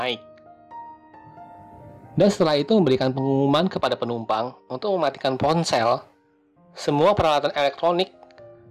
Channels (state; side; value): identical; both; correlation 1.00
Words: Dan setelah itu memberikan pengumuman kepada penumpang untuk mematikan ponsel, semua peralatan elektronik,